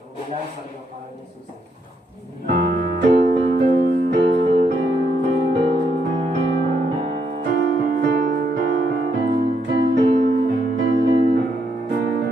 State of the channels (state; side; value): normal; both; correlation 0.77